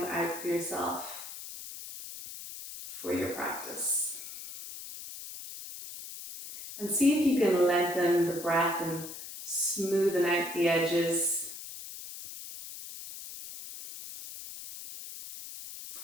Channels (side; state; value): left; noise; hiss, 11 dB below the sound